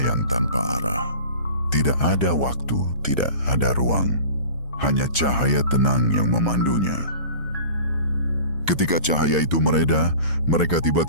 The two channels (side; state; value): both; inverted; correlation -0.39